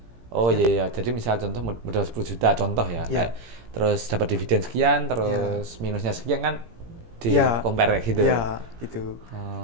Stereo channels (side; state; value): left; late; 17 ms